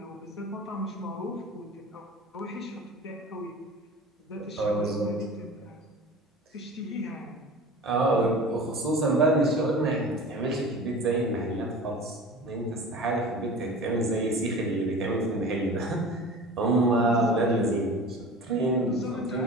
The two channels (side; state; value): both; normal; correlation 0.37